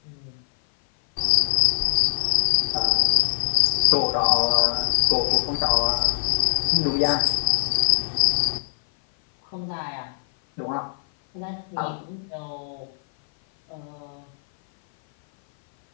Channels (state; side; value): silent; right; 57 dB below the other